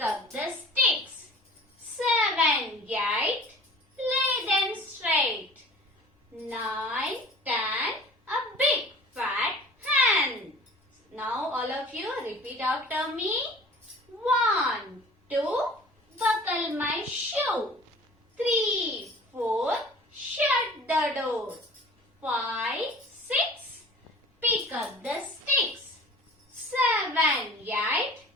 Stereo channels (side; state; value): both; normal; correlation 0.45